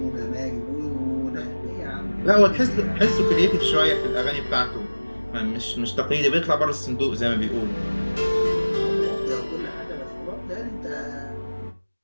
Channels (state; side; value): inverted; both; correlation -1.00